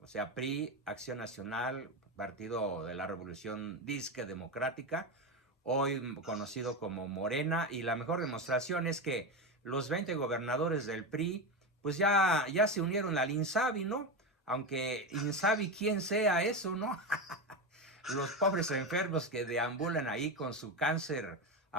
sea, PRI, Acción Nacional, Partido de la Revolución Disque Democrática, hoy conocido como Morena, y la mejor demostración es que los 20 gobernadores del PRI, pues ya se unieron al INSABI, ¿no? Aunque INSABI quién sea eso, ¿no? Los pobres enfermos que deambulan ahí con su cáncer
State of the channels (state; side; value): normal; both; correlation 0.16